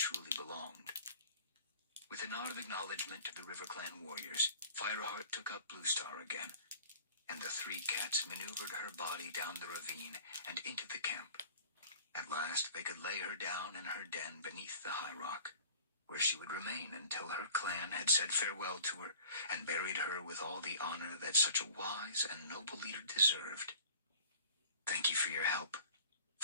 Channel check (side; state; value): both; inverted; correlation -0.45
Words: belonged. With a nod of acknowledgement to the RiverClan warriors, Fireheart took up Bluestar again, and the three cats maneuvered her body down the ravine and into the camp. At last they could lay her down in her den beneath the high rock, where she would remain until her clan had said farewell to her and buried her with all the honor that such a wise and noble leader deserved. Thank you for your help,